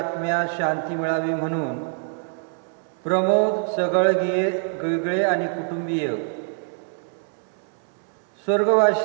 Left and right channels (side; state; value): left; silent; 60 dB below the other